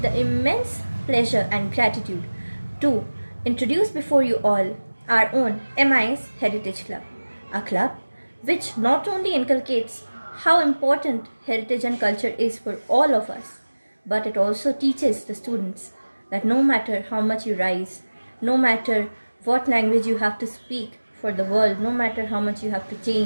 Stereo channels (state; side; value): inverted; both; correlation -1.00